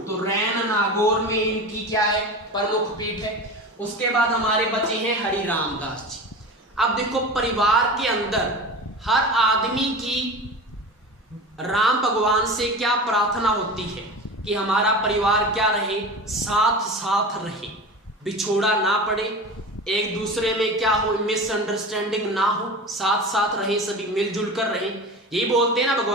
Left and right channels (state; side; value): normal; both; correlation 0.31